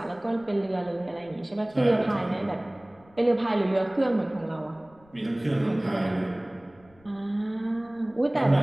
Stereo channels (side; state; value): left; noise; rumble, 28 dB below the sound